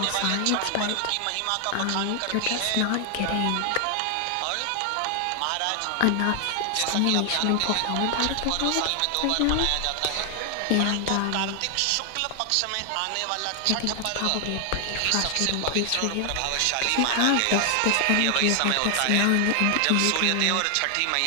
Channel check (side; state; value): both; different; correlation 0.00